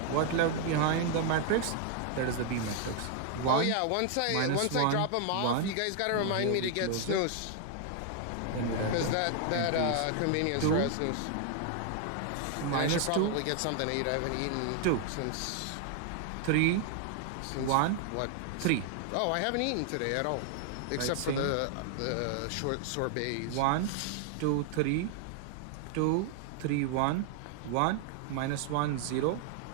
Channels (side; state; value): both; different; correlation 0.00